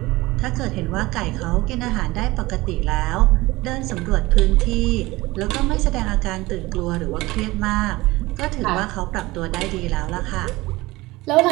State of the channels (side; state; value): left; quieter; 20.2 dB